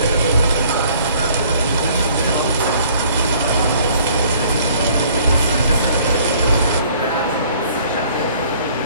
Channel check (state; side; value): inverted; both; correlation -0.57